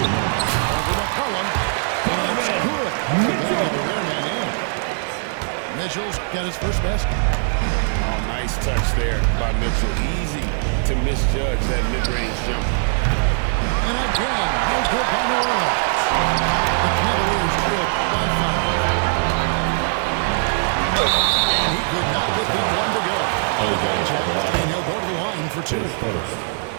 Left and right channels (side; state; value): left; silent; 65 dB below the other